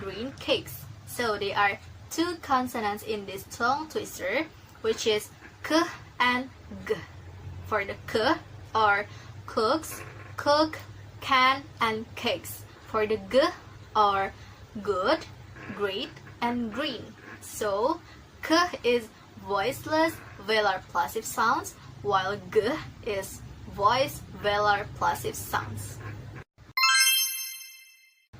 cakes. So there are 2 consonants in this tongue twister, which is k and g. For the k are cooks, cook, can, and cakes. For the g are good, great, and green. So k is voiceless velar plosive sounds, while g is voiced velar plosive sounds.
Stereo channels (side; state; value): both; identical; correlation 1.00